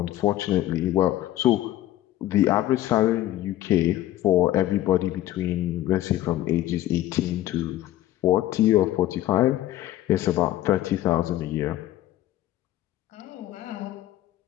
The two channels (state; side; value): quieter; right; 14.3 dB